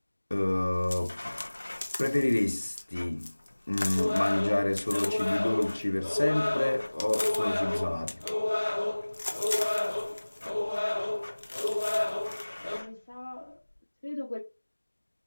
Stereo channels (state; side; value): inverted; both; correlation -1.00